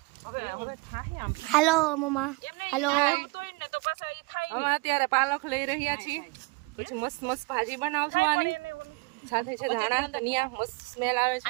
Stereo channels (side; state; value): left; quieter; 26.4 dB